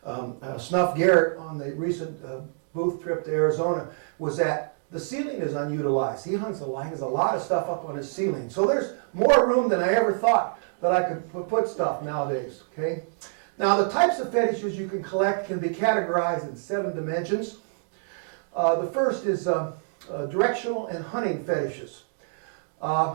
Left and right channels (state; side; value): silent; left; digital silence